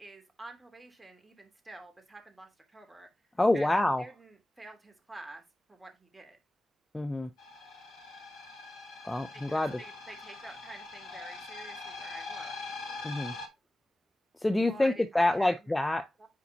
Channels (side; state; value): both; normal; correlation 0.96